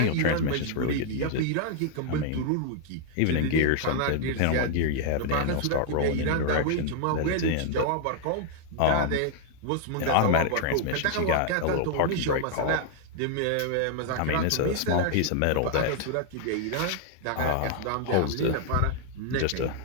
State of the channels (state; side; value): different; both; correlation 0.00